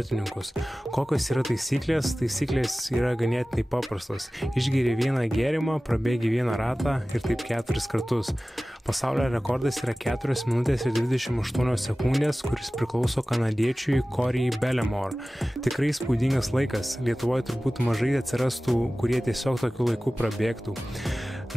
Kokios yra taisyklės? Taisyklės yra ganėtinai paprastos. Išgeri vieną gėrimą, prabėgi vieną ratą ir taip 4 kartus. Pasaulio rekordas yra 4 minutės ir 28 sekundės, kuris priklauso kanadiečiui Corey Bellemore. Tikrai spūdingas laikas. Lietuvoje turbūt mažai atsirastų, kurie tiesiog tokiu laiku prabėgtų.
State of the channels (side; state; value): both; normal; correlation 0.97